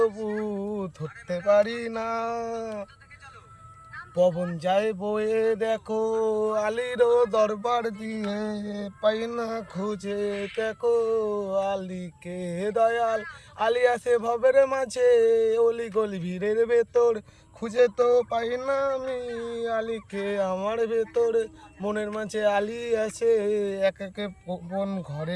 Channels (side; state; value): both; identical; correlation 1.00